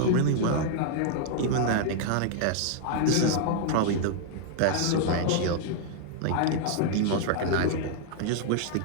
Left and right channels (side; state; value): both; different; correlation -0.01